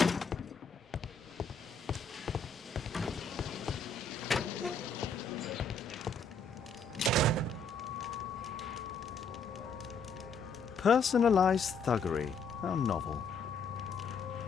Personalized thuggery. How novel.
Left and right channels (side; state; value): right; quieter; 4.1 dB